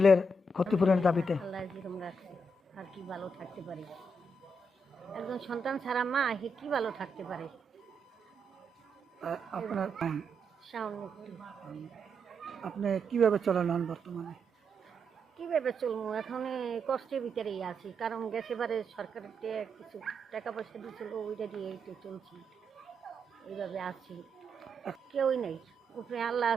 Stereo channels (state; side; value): normal; both; correlation 0.81